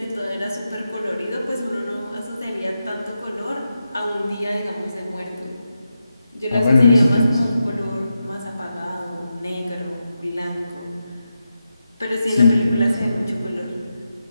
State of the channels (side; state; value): both; inverted; correlation -0.88